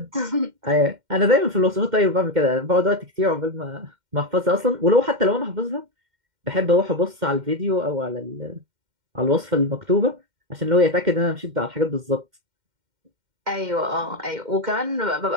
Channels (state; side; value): late; left; 2.1 ms